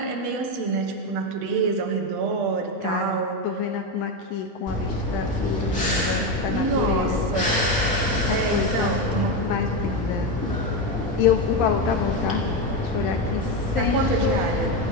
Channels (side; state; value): both; normal; correlation 0.12